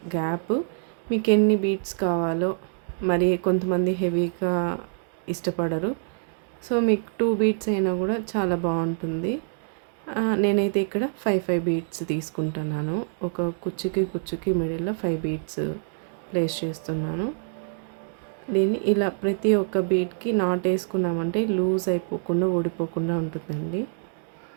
గ్యాప్ మీకు ఎన్ని బీడ్స్ కావాలో. మరి కొంతమంది హెవీగా ఇష్టపడరు, సో మీకు 2 బీడ్స్ అయినా కూడా చాలా బాగుంటుంది. నేనైతే ఇక్కడ 5 బీడ్స్ తీసుకుంటున్నాను. ఒక కుచ్చుకి మిడిల్లో 5 బీడ్స్ ప్లేస్ చేస్తున్నాను. దీన్ని ఇలా ప్రతి ఒక్క బీడ్కి నాట్ వేసుకున్నామంటే లూజ్ అయిపోకుండా, ఊడిపోకుండా ఉంటుందండి.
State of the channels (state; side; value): silent; left; 61 dB below the other